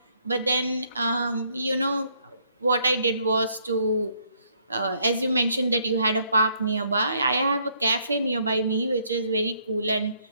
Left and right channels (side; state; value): both; inverted; correlation -0.69